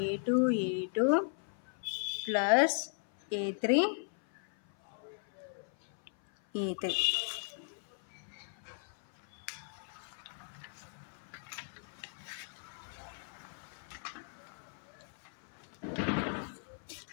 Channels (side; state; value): right; silent; 53 dB below the other